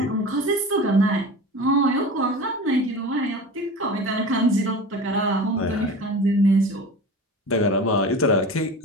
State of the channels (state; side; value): normal; both; correlation 0.33